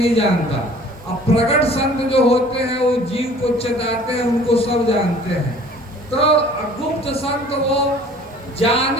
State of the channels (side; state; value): both; normal; correlation 0.50